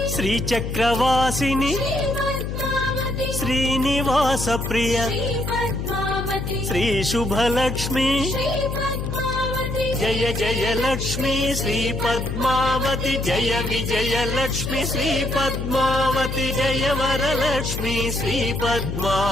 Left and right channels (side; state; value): left; noise; hum, 4 dB below the sound